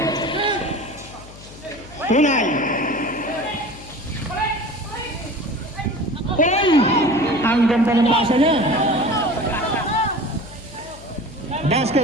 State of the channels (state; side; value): noise; left; hum, 18 dB below the sound